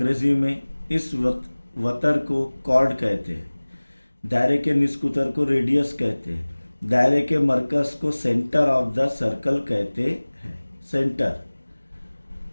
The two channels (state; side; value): inverted; both; correlation -1.00